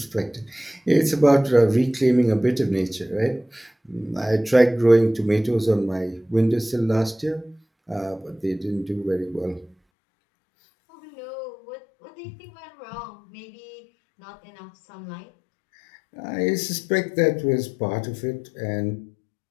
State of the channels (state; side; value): drops out; right; at 9.8 s